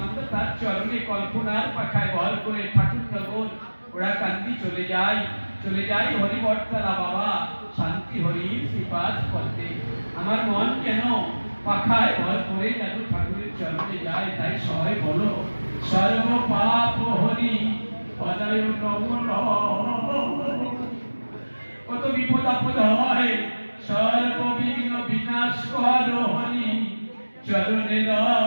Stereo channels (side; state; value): both; inverted; correlation -1.00